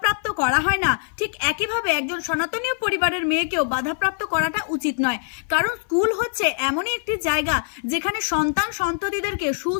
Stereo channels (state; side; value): silent; right; 56 dB below the other